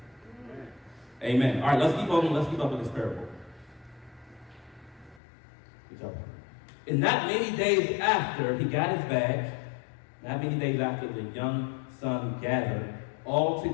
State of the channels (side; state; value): right; drops out; at 5.2 s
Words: Amen. All right, let's keep up with this parable. Good job. And not many days after he got his bag, not many days after, the young son gathered all